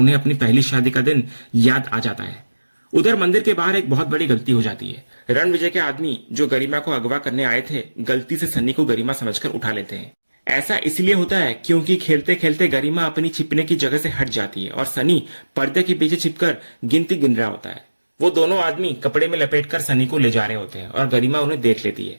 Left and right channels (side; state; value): both; inverted; correlation -1.00